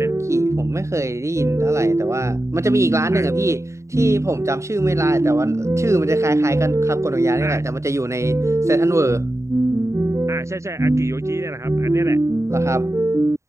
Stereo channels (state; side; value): late; left; 0.14 ms